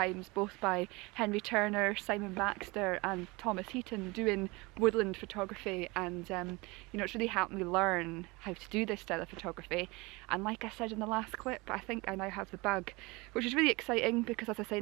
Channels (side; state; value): left; quieter; 24.6 dB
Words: both by Henry Turner, Simon Baxter and Thomas Heaton doing woodland photography, and you know, it's really helped me learn how to do this style of photography. And like I said in the last clip, I think I now have the bug, which is really exciting because, as I say,